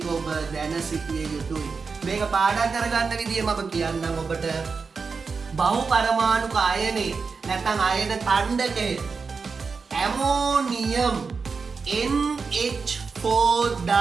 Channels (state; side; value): quieter; left; 5.0 dB